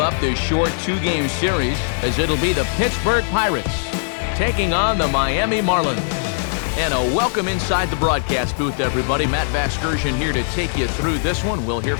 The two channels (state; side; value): silent; right; digital silence